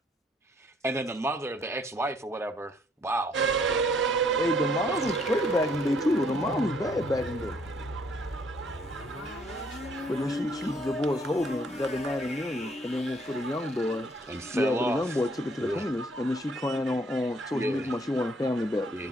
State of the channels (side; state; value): both; normal; correlation 0.65